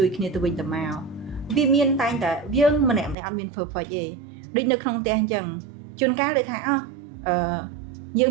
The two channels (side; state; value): left; drops out; at 3.2 s